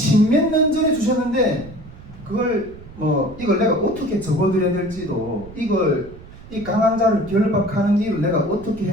년 전에 주셨는데 그걸 이걸 내가 어떻게 접어드려야 될지도 이 강한 자를 결박하는 일을 내가 어떻게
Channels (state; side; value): noise; right; rumble, 17 dB below the sound